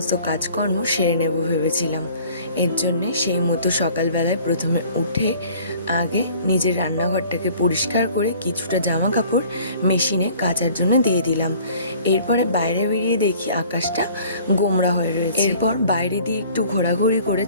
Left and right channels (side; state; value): both; inverted; correlation -0.51